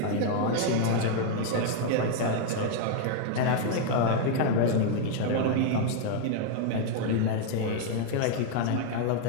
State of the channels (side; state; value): both; different; correlation 0.00